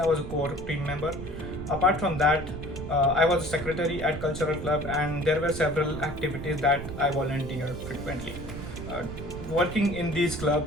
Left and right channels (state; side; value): noise; right; rumble, 9 dB below the sound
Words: was a core team member. Apart from that, I was a secretary at Cultural Club, and there were several activities that I volunteered frequently. Uh, Working in these